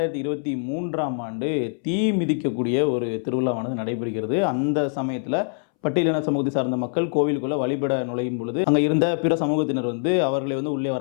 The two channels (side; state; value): right; silent; 63 dB below the other